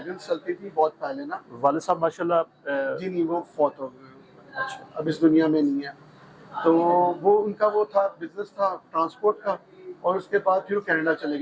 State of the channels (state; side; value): identical; both; correlation 1.00